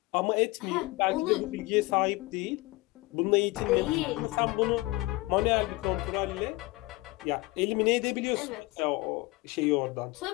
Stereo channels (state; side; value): quieter; right; 21.6 dB